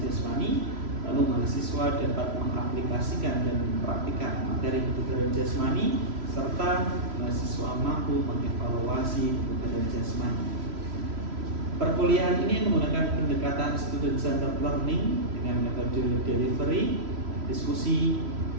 jasmani, lalu mahasiswa dapat mengaplikasikan dan mempraktikkan materi kebugaran jasmani, serta mahasiswa mampu mengevaluasi kebugaran jasmani. Perkuliahan ini menggunakan pendekatan student-centered learning dengan metode delivery, diskusi,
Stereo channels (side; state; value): left; late; 3.0 ms